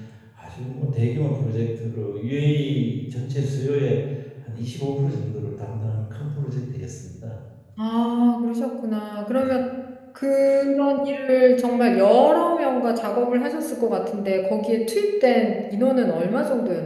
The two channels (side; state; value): both; identical; correlation 1.00